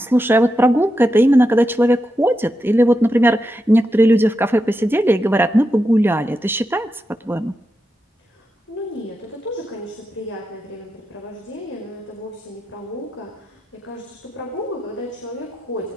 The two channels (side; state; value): both; normal; correlation 0.87